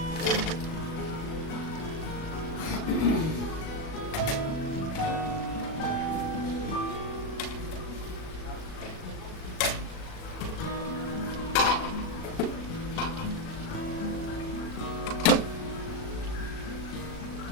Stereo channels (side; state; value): right; late; 37 ms